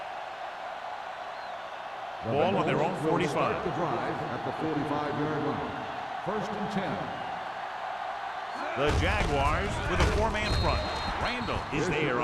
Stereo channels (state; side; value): identical; both; correlation 1.00